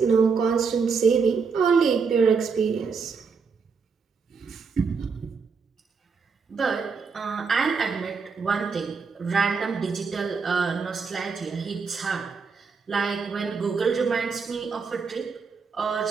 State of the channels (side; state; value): left; quieter; 5.3 dB